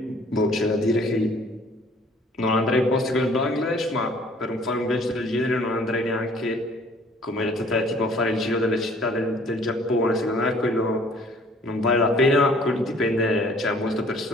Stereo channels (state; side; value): normal; both; correlation 0.55